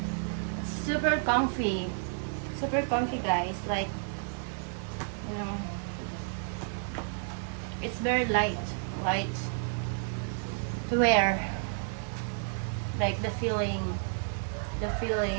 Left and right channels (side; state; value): left; silent; 57 dB below the other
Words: It's super comfy. Super comfy, guys. Like, it's very light to wear. Like the feeling.